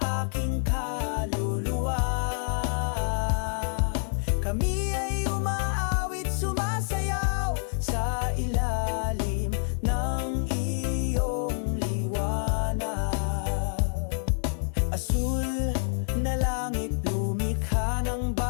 aking kaluluwa. Kami ay umaawit, sumasayaw sa ilalim ng iyong liwanag. Asul na langit, lumikha ng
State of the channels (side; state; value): right; silent; 60 dB below the other